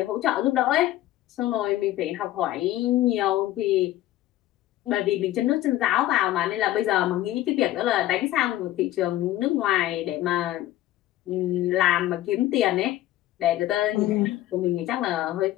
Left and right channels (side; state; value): right; quieter; 14.5 dB